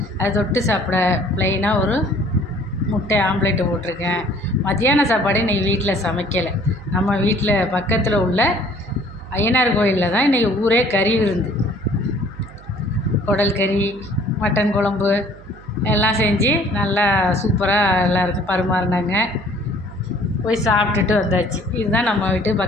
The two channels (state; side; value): noise; right; hum, 20 dB below the sound